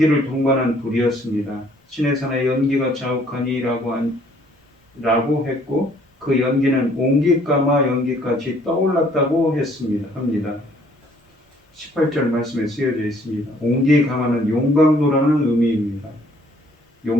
동반한 불이었습니다. 시내산에 연기가 자욱하니라고 했고 그 연기는 옹기까마 연기까지 떠올랐다고 합니다. 18절 말씀에 쓰여져 있습니다. 옹기가마는 용광로라는 의미입니다.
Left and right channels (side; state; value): both; normal; correlation 0.61